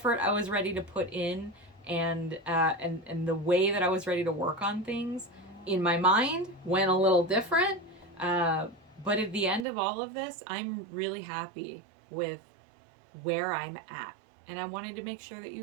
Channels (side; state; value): left; drops out; at 9.7 s